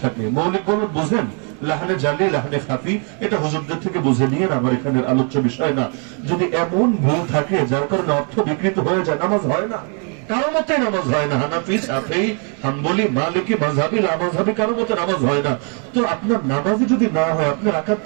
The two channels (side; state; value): left; quieter; 39.9 dB